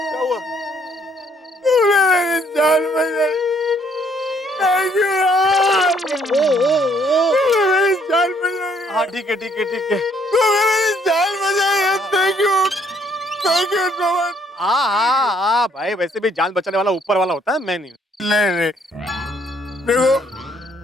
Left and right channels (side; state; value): both; normal; correlation 0.66